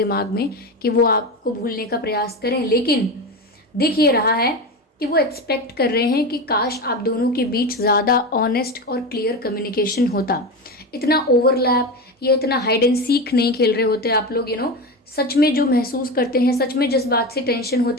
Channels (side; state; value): both; normal; correlation 0.21